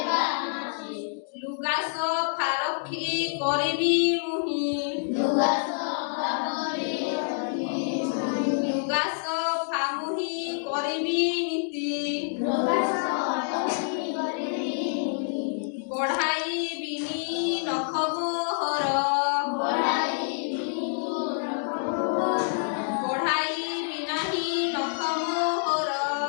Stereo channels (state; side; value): silent; right; digital silence